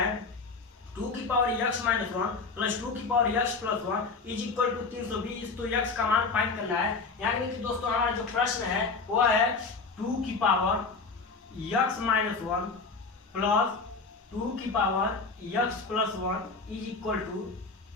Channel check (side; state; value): right; quieter; 4.3 dB